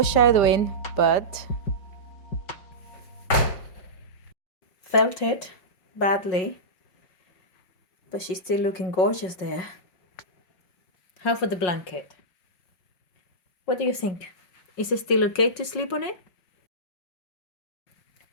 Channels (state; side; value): late; right; 5.4 ms